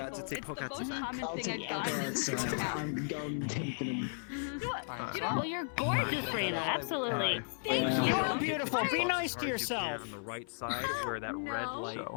to take Pokemon. I'm done taking him. Well, you're gorgeous, Raina. Absolutely. Thank you. You're beautiful. Be nice to yourself. On the right side where that red light.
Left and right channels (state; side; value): silent; right; 54 dB below the other